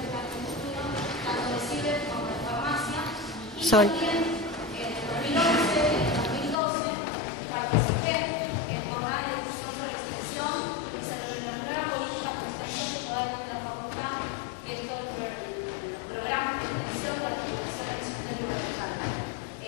Sol. También en 2011 y en 2012 participé en jornadas de discusión sobre extensión y sobre la nueva política de extensión que todavía tiene la facultad, que es todo el programa de extensión de la Fundación de Extensión Universal.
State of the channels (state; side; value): drops out; right; at 6.6 s